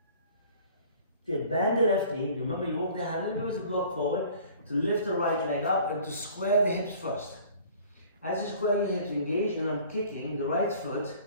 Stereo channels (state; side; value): inverted; both; correlation -0.50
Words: Good. Bend the left knee. Remember, you walk the hand a little bit as a block forward to lift the right leg up and to square the hips first. As you square your hips, engage, and I'm kicking the right foot